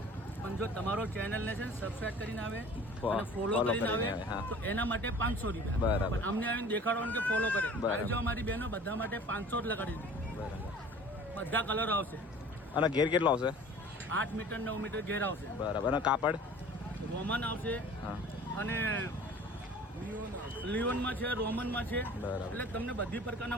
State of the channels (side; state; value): both; normal; correlation 0.45